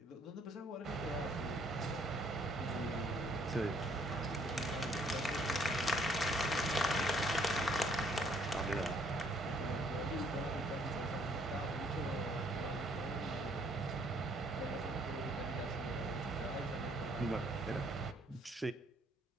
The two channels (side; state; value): both; normal; correlation 0.64